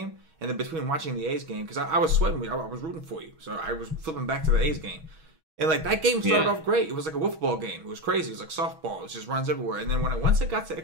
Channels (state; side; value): late; left; 6.3 ms